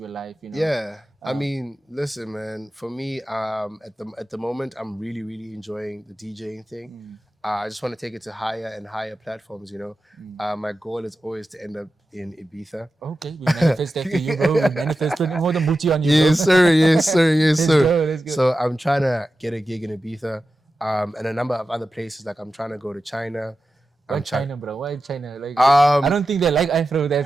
your life, you know. Yeah. I mean, listen, man. For me, at the moment, I'm really, really enjoying the DJing thing. I just want to take it to higher and higher platforms, you know. My goal is always to end up in Ibiza. Okay, we manifest that for you, bro. We manifest putting more than booty on you, bro. Yes, sir. Let's go. So I'm trying to get a gig in Ibiza, and a number of other places. Like I'm trying to go to China. Why China, bro? Why China? Like, Um, I don't think they like Afro that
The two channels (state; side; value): normal; both; correlation 0.92